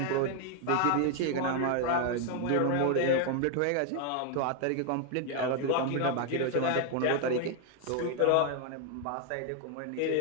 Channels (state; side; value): different; both; correlation 0.01